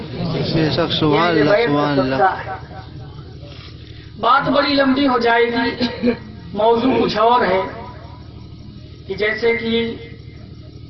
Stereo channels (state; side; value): identical; both; correlation 1.00